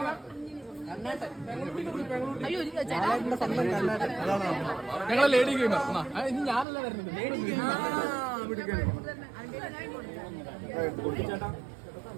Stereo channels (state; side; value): drops out; left; at 6.7 s